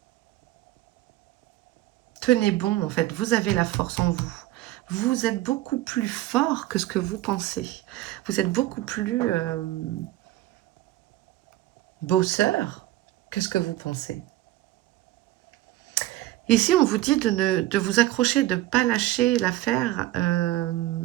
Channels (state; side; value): quieter; left; 15.8 dB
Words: Tenez bon, en fait, vous avez la force en vous. Vous êtes beaucoup plus fort que ce que vous pensez. Vous êtes beaucoup plus bosseur que ce que vous pensez. Ici, on vous dit de vous accrocher, de ne pas lâcher l'affaire,